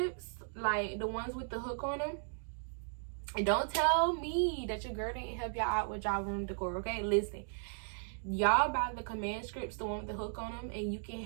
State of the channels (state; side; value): silent; left; digital silence